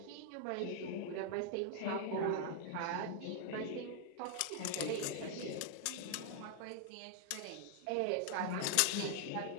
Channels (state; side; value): different; both; correlation 0.00